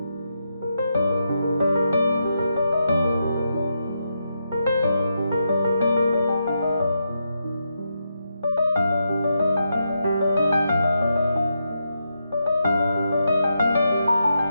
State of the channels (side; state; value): both; inverted; correlation -0.84